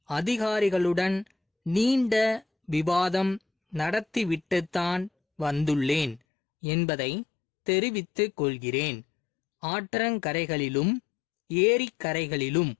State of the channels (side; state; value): right; drops out; at 6.2 s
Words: அதிகாரிகளுடன் நீண்ட விவாதம் நடத்திவிட்டுத்தான் வந்துள்ளேன் என்பதை தெரிவித்துக் கொள்கிறேன். ஆற்றங்கரைகளிலும் ஏரிக்கரைகளிலும்